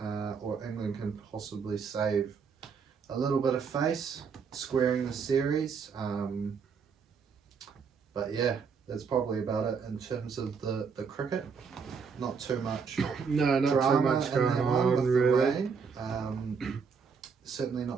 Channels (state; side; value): quieter; left; 5.8 dB